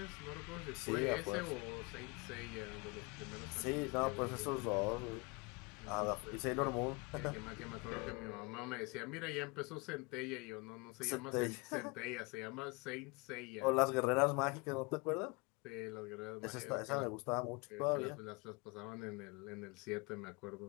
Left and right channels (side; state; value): right; quieter; 28.1 dB